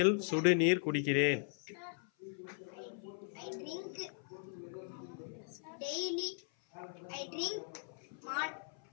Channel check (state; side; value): silent; right; 52 dB below the other